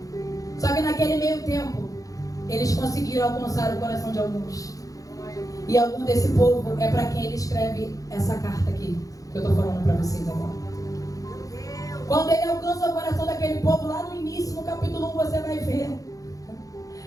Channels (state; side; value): late; right; 0.17 ms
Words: Só que naquele meio tempo eles conseguiram alcançar o coração de alguns. E algum desse povo é para quem ele escreve essa carta aqui, que eu estou falando para vocês agora. Quando ele alcança o coração daquele povo, lá no início, no capítulo 1, você vai ver.